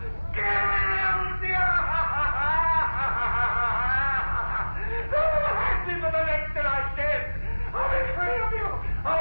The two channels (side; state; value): both; inverted; correlation -1.00